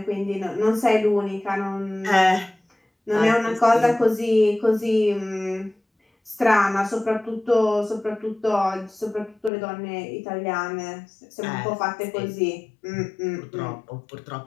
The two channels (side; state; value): right; drops out; at 9.5 s